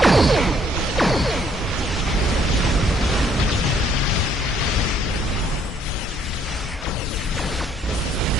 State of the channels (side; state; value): both; normal; correlation 0.65